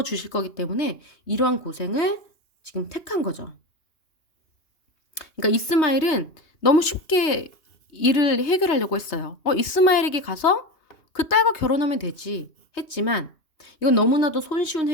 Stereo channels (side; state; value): right; late; 2.9 ms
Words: 주실 거기 때문에 이러한 고생을 지금 택한 거죠. 그러니까 이스마엘은 너무 쉽게 일을 해결하려고 했어요. 이스마엘에게 가서 그 딸과 결혼하면 되지 했지만 이건 너무나도 손쉬운